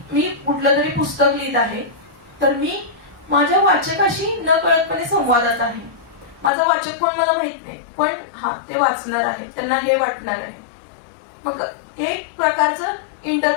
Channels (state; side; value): drops out; right; at 6.5 s